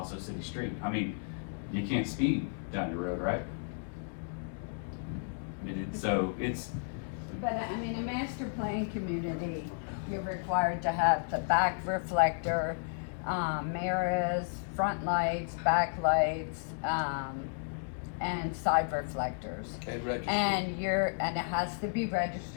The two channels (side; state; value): right; silent; digital silence